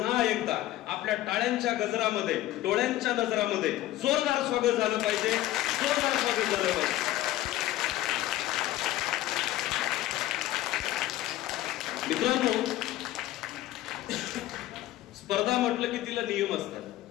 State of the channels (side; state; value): right; quieter; 15.0 dB